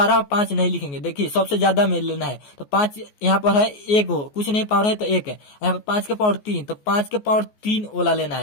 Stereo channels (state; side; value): late; right; 14 ms